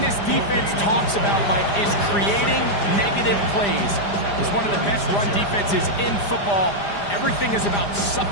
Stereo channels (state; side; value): late; right; 5.0 ms